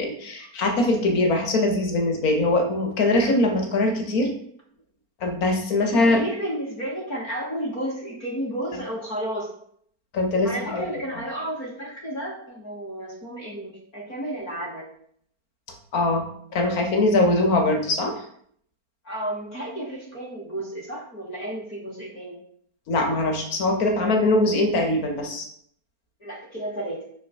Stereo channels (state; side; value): late; right; 4.4 ms